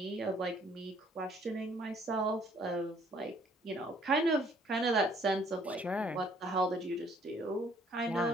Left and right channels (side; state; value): both; normal; correlation 0.62